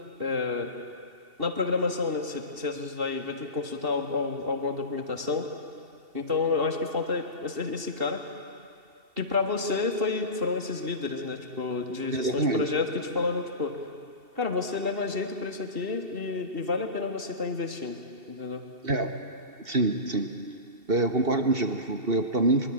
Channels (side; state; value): left; late; 2.7 ms